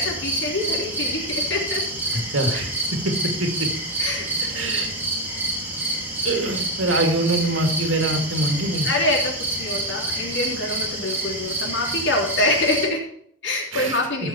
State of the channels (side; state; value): both; normal; correlation 0.06